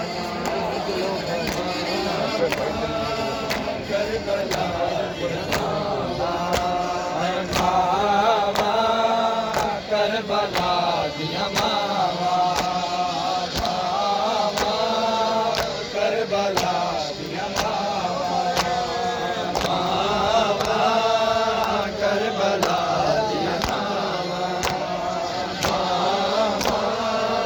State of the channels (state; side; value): identical; both; correlation 1.00